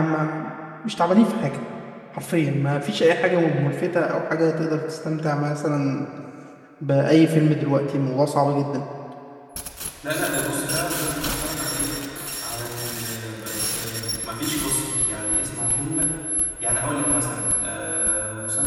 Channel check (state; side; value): identical; both; correlation 1.00